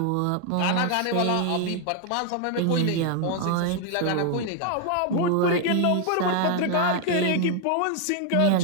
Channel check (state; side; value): different; both; correlation 0.00